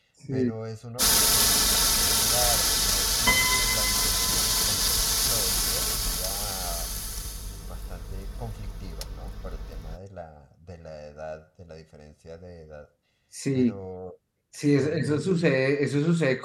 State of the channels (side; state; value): both; identical; correlation 1.00